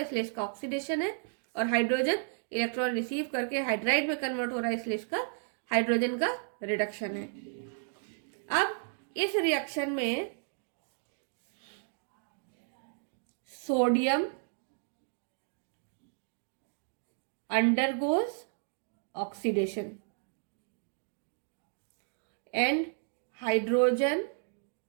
इसका ऑक्सीडेशन है, और हाइड्रोजन इलेक्ट्रॉन रिसीव करके हाइड्राइड में कन्वर्ट हो रहा है इसलिए इसका हाइड्रोजन का रिडक्शन है। अब इस रिएक्शन में sodium undergoes oxidation and hydrogen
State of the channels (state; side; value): silent; left; 56 dB below the other